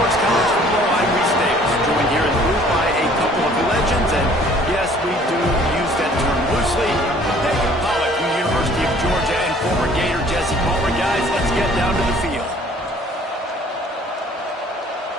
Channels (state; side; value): normal; both; correlation 0.55